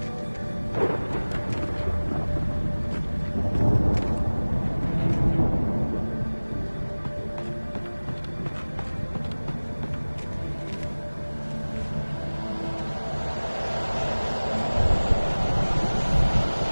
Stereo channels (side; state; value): both; inverted; correlation -1.00